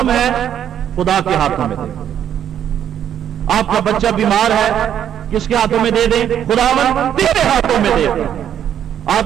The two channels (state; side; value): quieter; left; 9.7 dB